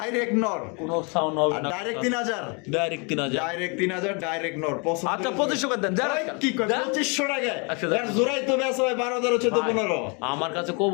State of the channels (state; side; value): quieter; right; 33.2 dB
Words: নর, কোনো সাউন্ড হবে আর না। ডাইরেক্ট 3,000। ডাইরেক্ট 3,000। ডাইরেক্ট 3,000, ডাইরেক্ট নর। পছন্দ আচ্ছা হলে- 2500 করে দেন, যারা ওই, কি কয়? যা। 2500 টাকায়? আচ্ছা, যা। এর জোড়াই তো বেচা হয় 12,000, 14, 15। আমার কাছে